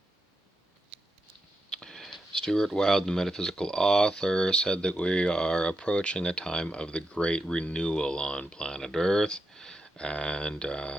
Stuart Wilde, the metaphysical author, said that we are approaching a time of the great renewal on planet Earth. And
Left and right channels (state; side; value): normal; both; correlation 0.86